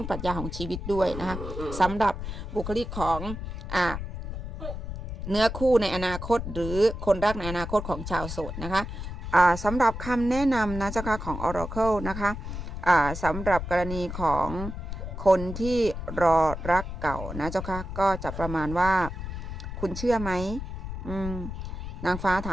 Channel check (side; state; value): left; noise; rumble, 7 dB below the sound